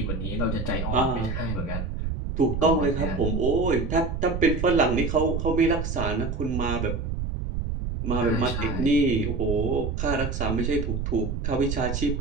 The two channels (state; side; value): noise; right; rumble, 3 dB below the sound